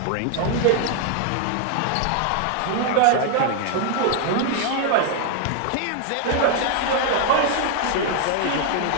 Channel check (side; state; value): both; different; correlation 0.00